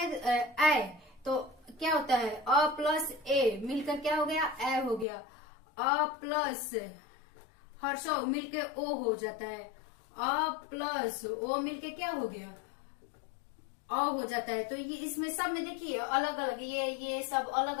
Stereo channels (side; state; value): right; drops out; at 5.1 s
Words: तो क्या होता है, अ प्लस ए मिलकर क्या हो गया, ए हो गया। अ प्लस हर्षव मिलके ओ हो जाता है। अ प्लस ओ मिलके क्या हो गया, अ हो जाता है। तो ये इसमें सब में देखिए अलग अलग, ये सब अलग